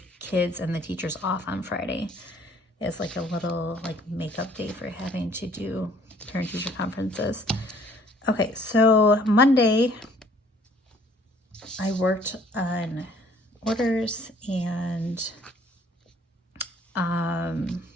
kids and the teachers off on Friday. It's like a little makeup day for having to do parent-teacher conferences. Okay, so Monday I worked on orders, and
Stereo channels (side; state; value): both; normal; correlation 0.58